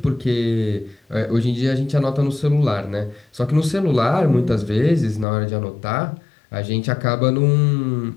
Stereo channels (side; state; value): right; drops out; at 5.2 s